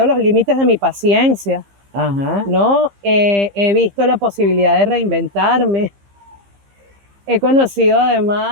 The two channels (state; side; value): late; left; 15 ms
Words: los límites de mi paciencia, Ajá. ¿no? He visto la posibilidad de reinventarme. He conocido